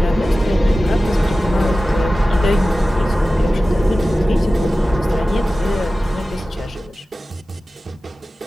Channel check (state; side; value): normal; both; correlation 0.95